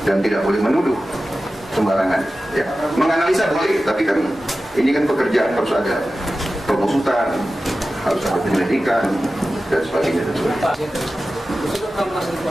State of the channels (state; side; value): normal; both; correlation 0.94